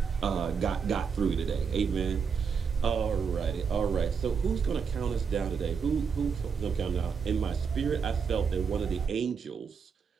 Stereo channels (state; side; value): quieter; left; 6.1 dB